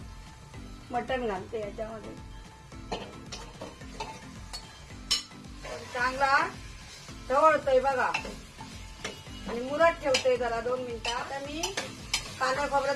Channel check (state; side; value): identical; both; correlation 1.00